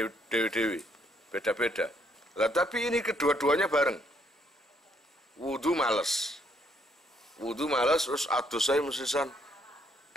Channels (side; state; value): both; normal; correlation 0.70